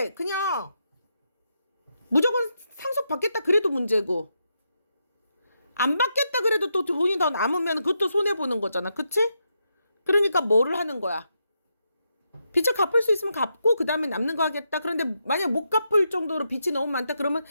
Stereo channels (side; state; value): both; inverted; correlation -0.83